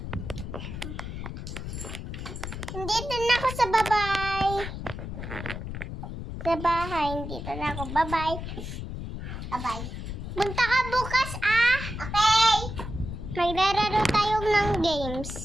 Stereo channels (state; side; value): noise; left; rumble, 7 dB below the sound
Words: Dito na ako sa babay. Sa bahay, dito na ako. Bye-bye. Bye-bye. Punta ka bukas, ah. Okay. Maglalaro tayo ng games.